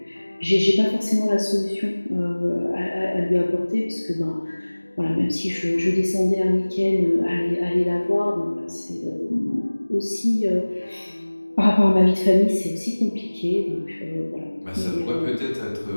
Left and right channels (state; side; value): inverted; both; correlation -1.00